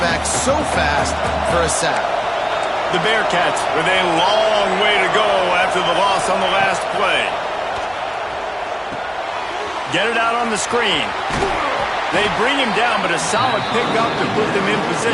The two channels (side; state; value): both; identical; correlation 1.00